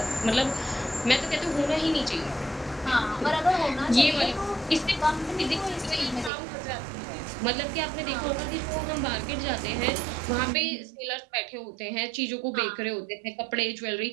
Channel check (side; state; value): left; drops out; at 6.3 s